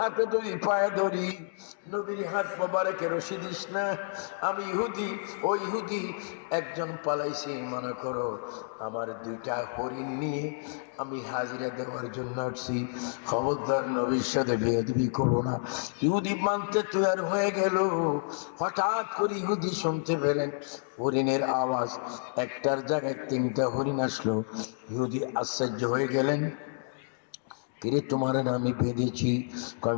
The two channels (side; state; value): right; silent; digital silence